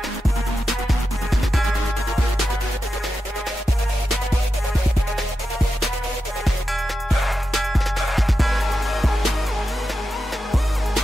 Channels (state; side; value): normal; both; correlation 0.90